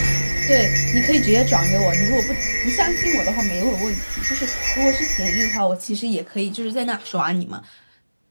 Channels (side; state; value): both; inverted; correlation -1.00